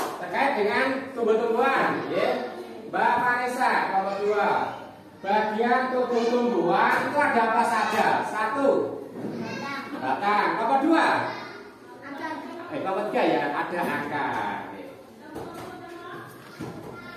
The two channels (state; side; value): identical; both; correlation 1.00